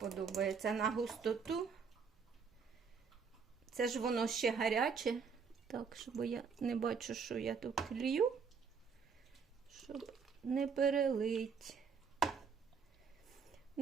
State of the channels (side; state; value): left; quieter; 5.8 dB